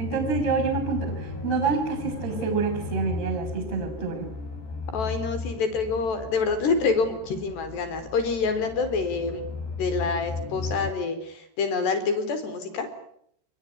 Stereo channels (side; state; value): right; late; 14 ms